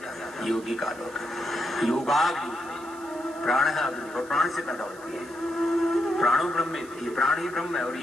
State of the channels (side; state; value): right; noise; hiss, 22 dB below the sound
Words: है, यौगिक आलोक है, योगाग्नि है, प्राण है अग्नि, और प्राण से पैदा होती है। प्राणो ब्रह्म, ये प्राण ही ब्रह्म है और